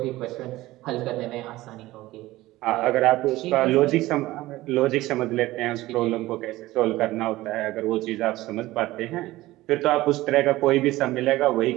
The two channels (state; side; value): quieter; left; 17.6 dB